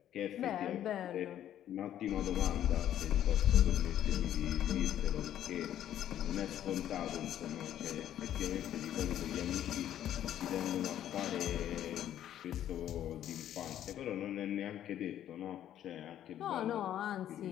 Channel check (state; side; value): quieter; right; 11.3 dB